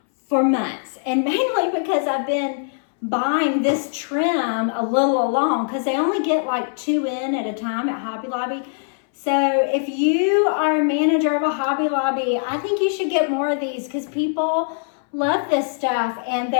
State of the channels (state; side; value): silent; right; 62 dB below the other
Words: for months, and mainly because I've been buying this trim a little along because they only get like 2 in at a time at Hobby Lobby. So if you are a manager of a Hobby Lobby, I think you should get more of these because people love this stuff and